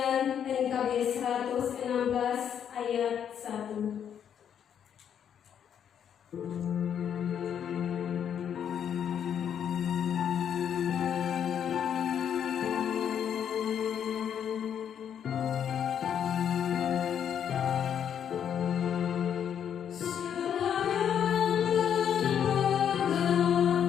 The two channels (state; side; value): quieter; right; 8.7 dB